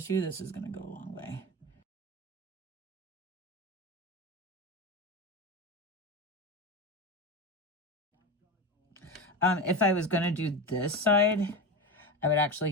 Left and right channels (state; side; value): normal; both; correlation 0.22